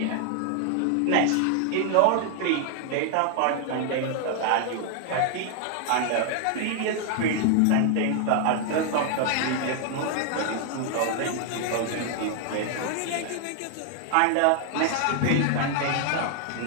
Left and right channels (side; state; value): both; different; correlation 0.00